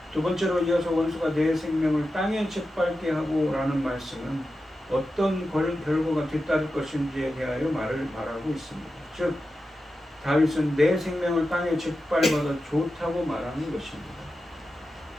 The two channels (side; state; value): both; normal; correlation 0.91